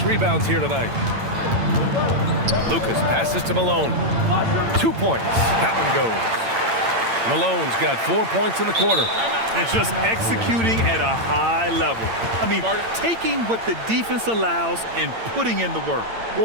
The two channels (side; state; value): left; late; 8.8 ms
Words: rebounds here tonight. Lucas passes to Malone. 2 points. That one goes. Malone's got 4 points in the quarter. And just executing at a high level. I mean, taking what the defense allows and putting in the work.